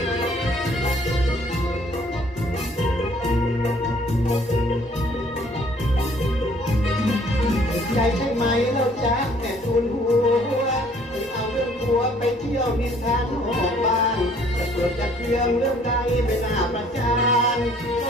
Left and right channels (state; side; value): noise; right; hum, 25 dB below the sound